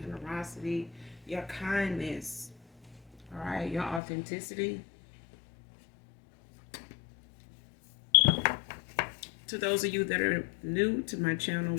your kindness. All right, your authenticity. To those of you that are new to my channel,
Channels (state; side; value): drops out; right; at 4.0 s